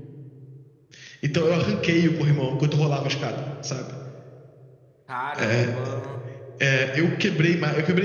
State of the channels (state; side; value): identical; both; correlation 1.00